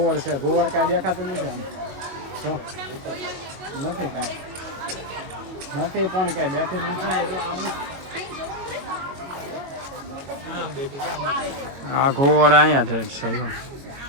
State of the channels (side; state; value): left; late; 22 ms